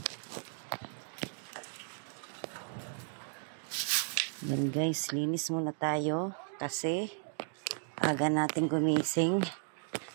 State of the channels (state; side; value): silent; left; digital silence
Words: Yan guys, linis muna tayo kasi aga natin gumising.